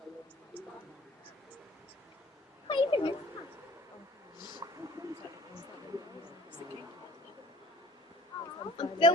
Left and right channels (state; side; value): normal; both; correlation 0.51